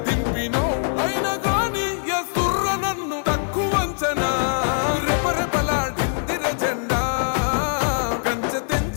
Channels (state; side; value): silent; right; 56 dB below the other